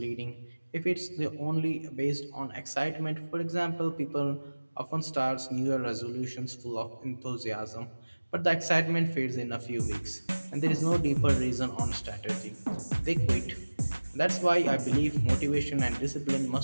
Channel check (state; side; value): inverted; both; correlation -1.00